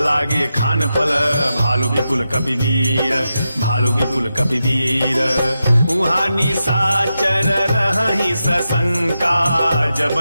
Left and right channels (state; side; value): inverted; both; correlation -0.89